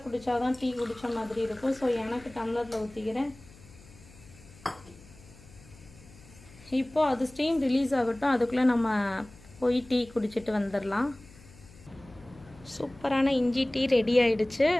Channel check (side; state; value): left; noise; hum, 22 dB below the sound